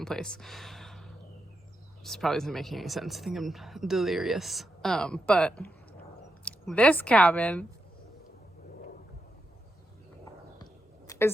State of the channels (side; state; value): both; normal; correlation 0.85